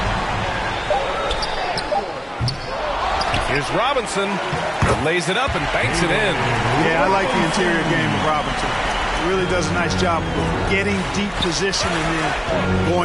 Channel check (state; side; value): identical; both; correlation 1.00